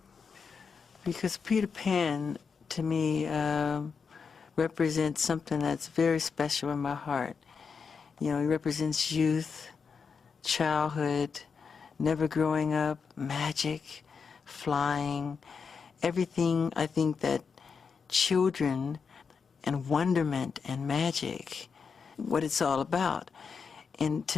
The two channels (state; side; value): quieter; right; 5.6 dB